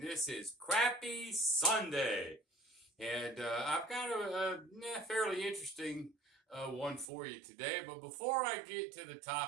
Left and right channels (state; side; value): drops out; left; at 7.1 s